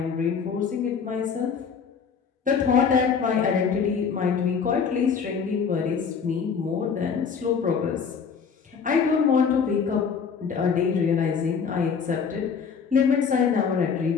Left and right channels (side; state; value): right; quieter; 6.2 dB